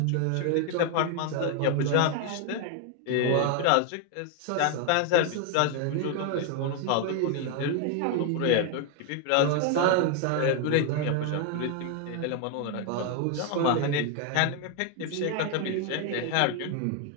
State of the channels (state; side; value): different; both; correlation 0.01